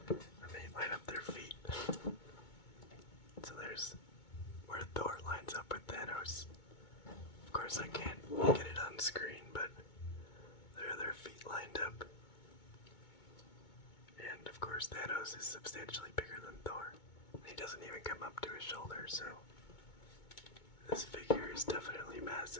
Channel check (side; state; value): right; late; 2.2 ms